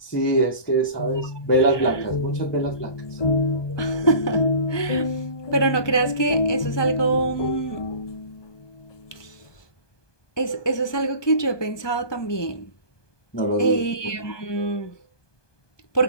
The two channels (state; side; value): late; right; 1.2 ms